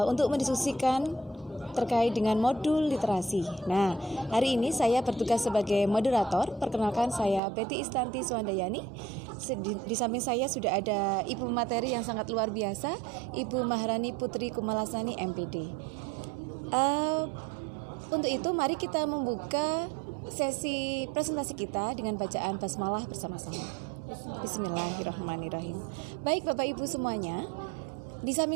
untuk mendiskusikan terkait dengan modul literasi. Nah, hari ini saya bertugas sebagai moderator. Perkenalkan, saya Betty Istanti Suandayani. Di samping saya sudah ada Ibu Materi yang sangat luar biasa, Ibu Maharani Putri Kumalasani MPD. Untuk itu mari kita membuka sesi presentasi kita dengan bacaan basmalah bersama-sama. Bismillahirrahmanirrahim. Baik Bapak Ibu semuanya, di samping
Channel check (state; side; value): drops out; left; at 7.4 s